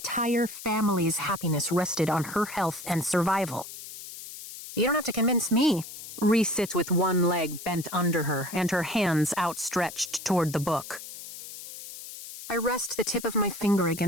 family's happiness rested on her health and survival. You don't have to convince me. Rhys sits with one leg bent under her and her hands outstretched toward the book. I rest the tip of my finger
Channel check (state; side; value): noise; left; hiss, 12 dB below the sound